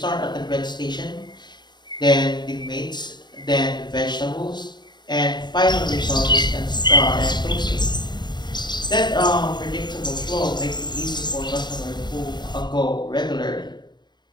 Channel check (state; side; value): late; right; 0.21 ms